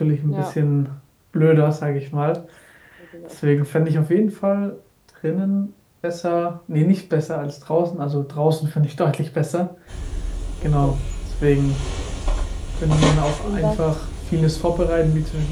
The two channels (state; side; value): identical; both; correlation 1.00